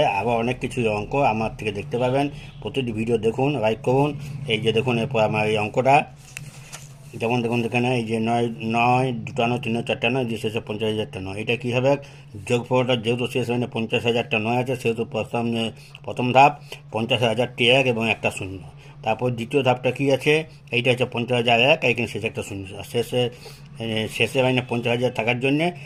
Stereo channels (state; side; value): identical; both; correlation 1.00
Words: আবার অনেক কিছু অঙ্ক আমার থেকে দেখতে পাবেন। প্রতিটি ভিডিও দেখুন, লাইক করুন। এই যে দেখুন, এরপর আমার এই অঙ্কটা যেমন দেখুন এখানে এই যে নয় নয়, দুটা নয়, তিন নয়, চারটা নয়, যে শেষে 50,000টা নয়। এটা কী হবে? যোগফলটা যেহেতু শেষ মানে 50,000টা নয় আছে, সেহেতু প্রথম ধাপ 50,000টি এক এবং একটা শূন্য। তারপর দ্বিতীয় ধাপটা কী আছে? এইটা হচ্ছে 50,001, এইখানে শেষে একটা শূন্য। আর শেষে মানে 50,000 থাকার জন্যে